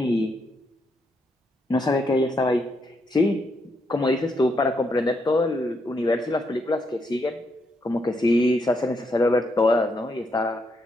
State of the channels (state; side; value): normal; both; correlation 0.78